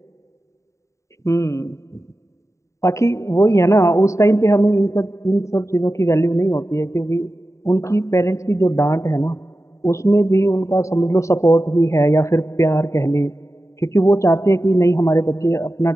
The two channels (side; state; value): right; late; 0.14 ms